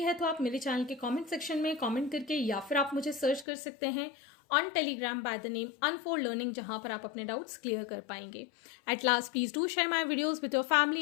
तो आप मेरे चैनल के कमेंट सेक्शन में कमेंट करके या फिर आप मुझे सर्च कर सकते हैं on Telegram by the name unfold learning, जहां पर आप अपने डाउट्स क्लियर कर पाएंगे। At last please do share my videos with your family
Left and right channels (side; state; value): right; drops out; at 3.5 s